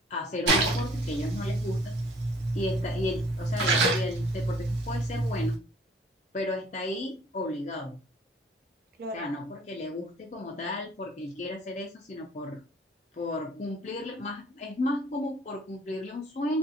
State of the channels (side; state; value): both; normal; correlation 0.55